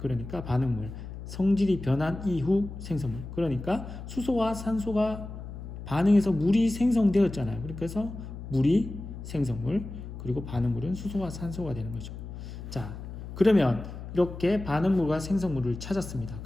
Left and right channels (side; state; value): left; noise; hum, 10 dB below the sound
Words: 반응물, 성질이 변한 이후 생성물, 그러니까 수소와 산소가 반응해서 물이 생성되었잖아요. 그래서 물이 생성물, 그리고 반응물은 수소와 산소가 되는 거죠. 자, 그러면 이렇게 반응물과 생성물을 찾았습니다.